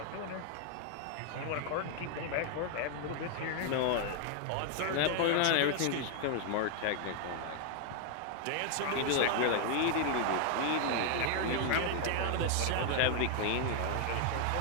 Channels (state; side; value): different; both; correlation 0.00